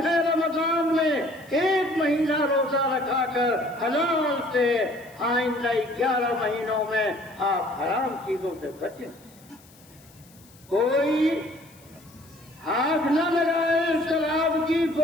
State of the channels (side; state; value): left; noise; hiss, 26 dB below the sound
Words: ہے۔ رمضان میں ایک مہینہ روزہ رکھا کر حلال سے آئندہ 11 مہینوں میں آپ حرام چیزوں سے بچیں۔ کوئی ہاتھ نہ لگائے شراب کی